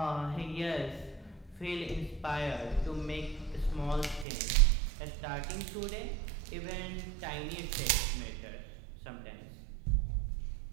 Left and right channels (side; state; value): left; drops out; at 4.2 s